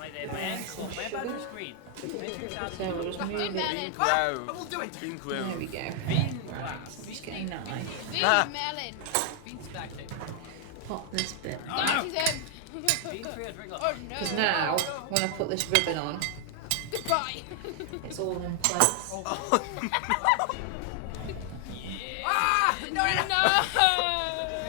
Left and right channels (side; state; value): both; different; correlation 0.00